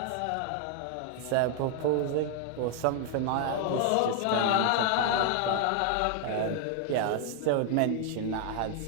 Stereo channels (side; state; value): both; different; correlation 0.00